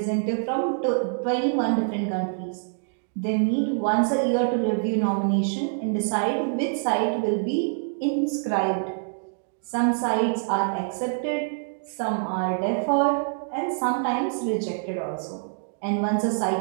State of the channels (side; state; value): left; silent; digital silence